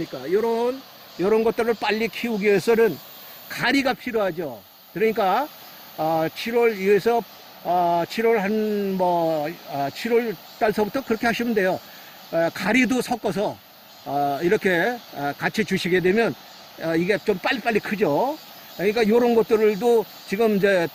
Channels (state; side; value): identical; both; correlation 1.00